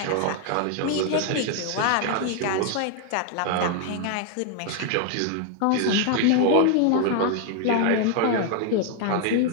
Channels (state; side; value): different; both; correlation 0.00